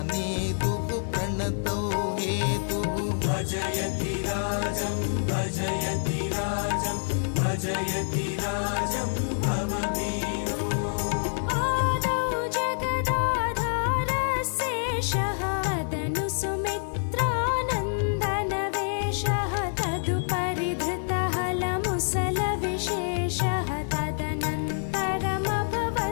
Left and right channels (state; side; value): silent; right; digital silence